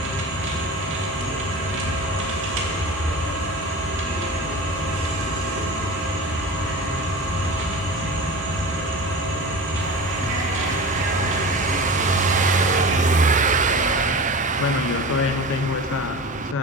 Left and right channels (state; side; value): normal; both; correlation 0.33